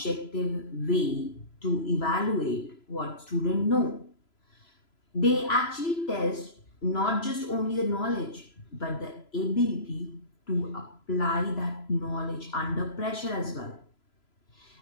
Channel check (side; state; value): right; late; 3.0 ms